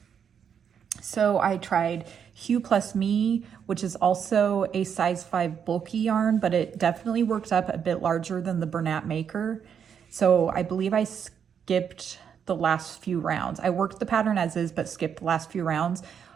So I tried Hue Plus Me, which is also a size 5 bulky yarn, but it definitely worked up a bit larger than the Bernat Maker. So I believe I skipped the last few rounds. I worked the pattern as is, but skipped the last few rounds.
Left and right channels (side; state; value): left; quieter; 7.7 dB